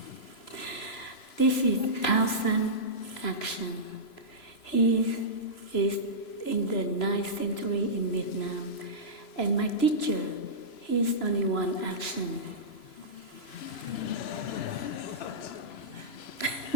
This is 1,000 action. He is in the 9th century in Vietnam. And my teacher, he is only one action.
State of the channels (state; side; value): late; right; 3.0 ms